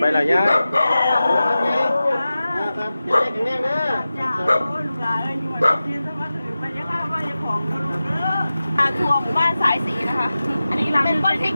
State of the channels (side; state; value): both; inverted; correlation -0.95